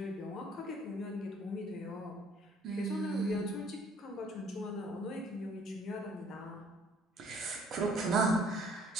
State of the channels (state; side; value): normal; both; correlation 0.58